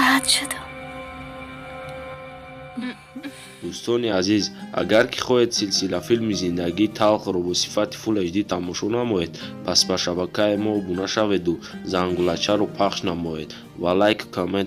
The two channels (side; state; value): both; identical; correlation 1.00